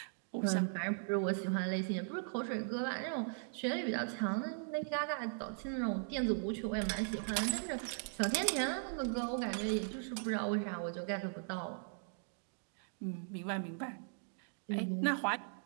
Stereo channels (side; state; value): left; silent; digital silence